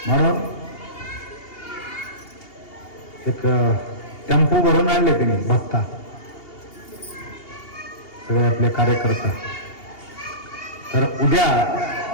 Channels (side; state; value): right; late; 2.8 ms